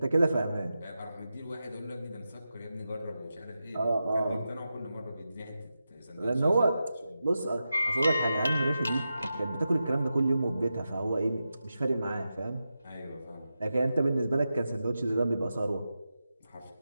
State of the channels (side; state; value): both; inverted; correlation -0.91